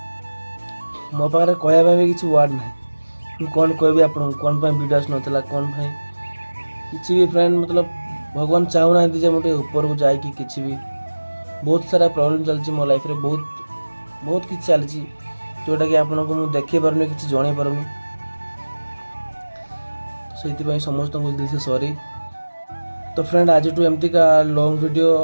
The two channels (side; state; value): both; inverted; correlation -1.00